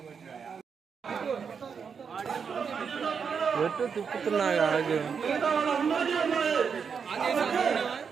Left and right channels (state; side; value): quieter; left; 6.3 dB